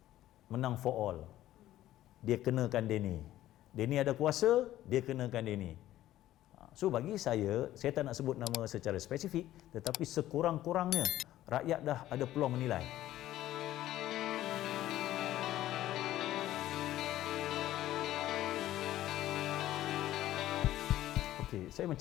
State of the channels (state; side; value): quieter; right; 14.0 dB